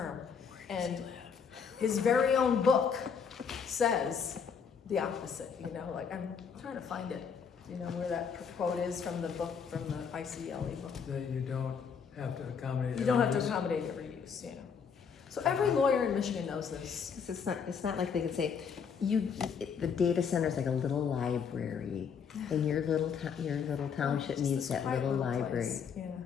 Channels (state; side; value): quieter; right; 6.5 dB